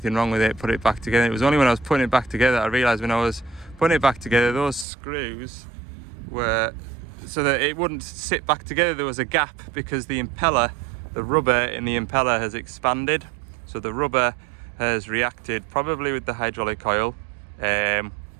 wrong with it, put it back together. It was only when I was putting it back together I realised when I was putting it back together, those screws were, so that it wouldn't sit back together, there was a gap because the impeller, the rubber in the impeller has expanded. So the rubber has reacted probably with the hydraulic oil, and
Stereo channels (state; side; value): drops out; left; at 4.9 s